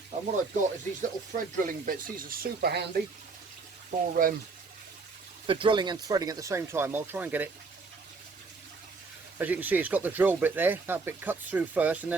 and what I've got is these little thread drilling bits. These are super handy for drilling and threading at the same time. I'll try and get it. As you can see, it's got the drill bit there. That bit cuts through first, and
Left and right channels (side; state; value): left; quieter; 4.2 dB